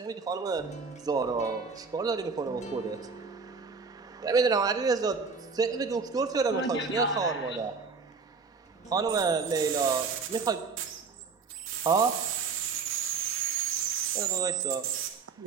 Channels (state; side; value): quieter; left; 5.0 dB